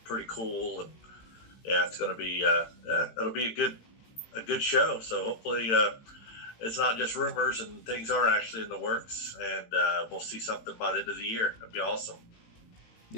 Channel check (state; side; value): late; right; 18 ms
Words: pretty cool, and yeah, it's going to be it'll be a good show. So hopefully it's not just rumors and things are actually in the works, and we'll see something by the end of the year. That'd be awesome.